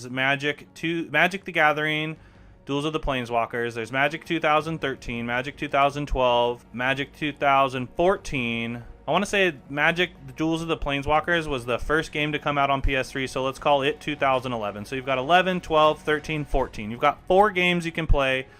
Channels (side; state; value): both; identical; correlation 1.00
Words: Magic the Gathering, Duels of the Planeswalkers. There's Magic 2013, Magic 2012, Magic 2014. I want to say Magic the Duels of the Planeswalkers was the first game to come out on PS3, so let's call it 2011. So you've got 11, 12, 13, 14. You've got 4 games you can play